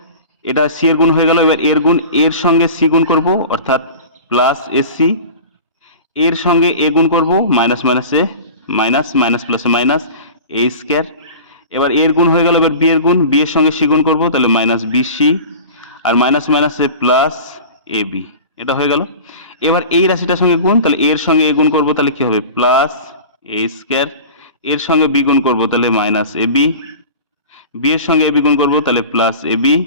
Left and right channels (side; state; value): both; inverted; correlation -0.36